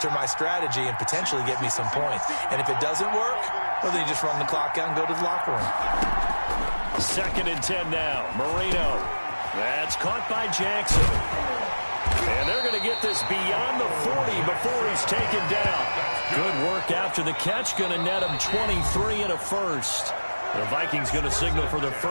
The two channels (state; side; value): inverted; both; correlation -1.00